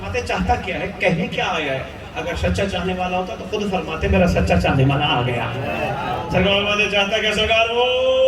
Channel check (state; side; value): identical; both; correlation 1.00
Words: چاہتا کیا ہے, کہنے کیا آیا ہے؟ اگر سچا چاہنے والا ہوتا تو خود فرماتے میرا سچا چاہنے والا آ گیا. سرکار فرماتے چاہتا کیا؟ سرکار وہ